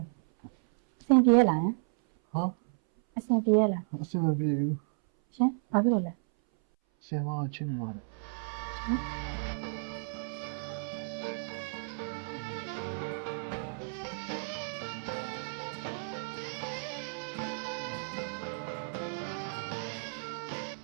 အဆင်ပြေလားဟာအဆင်ပြေလားအဆင်မပြေဘူးရှင်ဘာဖြစ်လို့လဲဆင်မချင်းနေပါတယ်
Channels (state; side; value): silent; left; 56 dB below the other